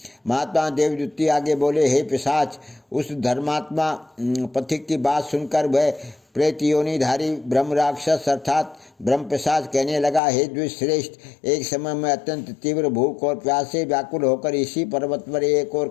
महात्मा देवदूती आगे बोले, हे पिशाच, उस धर्मात्मा पथिक की बात सुनकर वह प्रेत योनिधारी ब्रह्म राक्षस अर्थात ब्रह्म पिशाच कहने लगा, हे द्विश्रेष्ठ, एक समय में अत्यंत तीव्र भूख और प्यास से व्याकुल होकर इसी पर्वत पर एक और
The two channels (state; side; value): drops out; right; at 10.2 s